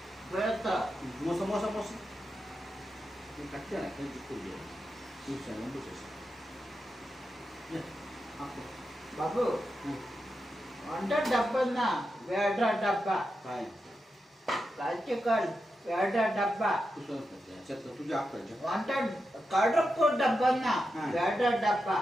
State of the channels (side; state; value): both; normal; correlation 0.88